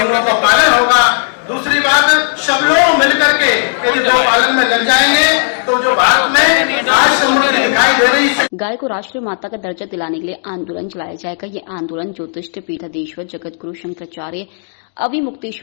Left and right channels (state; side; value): silent; right; digital silence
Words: का पालन होगा। दूसरी बात, सब लोग मिलकर के यदि गौ पालन में लग जाएंगे तो जो भारत में आज समृद्धि दिखाई दे रही है। गाय को राष्ट्रीय माता का दर्जा दिलाने के लिए आंदोलन चलाया जाएगा। ये आंदोलन ज्योतिष पीठाधीश्वर जगत गुरु शंकराचार्य